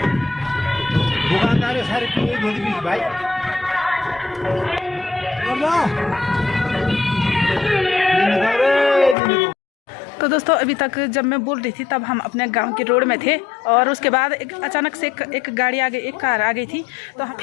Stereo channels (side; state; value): right; drops out; at 9.2 s